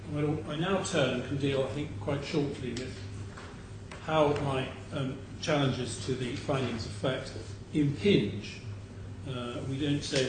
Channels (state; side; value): identical; both; correlation 1.00